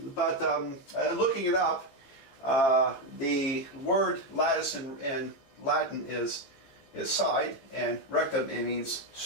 looking it up, the word lattice in Latin is side, and rectum, it means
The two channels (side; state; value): right; late; 15 ms